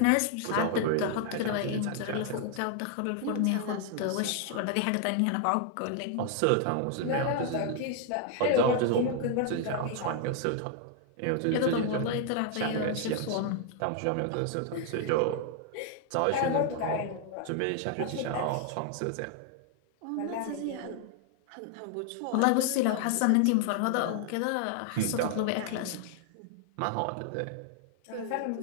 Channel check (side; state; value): both; different; correlation 0.00